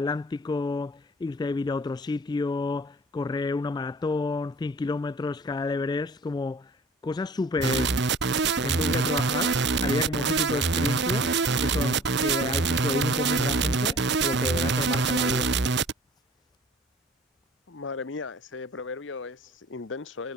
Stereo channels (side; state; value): both; normal; correlation 0.47